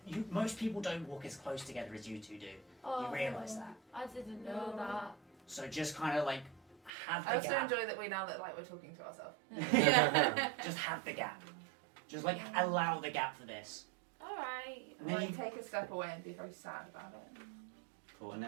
Most people don't walk as close together as you two do. Oh, You realise that. I didn't know that. So just kind of like have the I also gap. enjoy that we now look like we're talking to ourselves. Just have the gap. Just like allow the gap for this. Alright. And then Like you take a step away and be very sad about it. Cool. And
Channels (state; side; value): drops out; left; at 6.9 s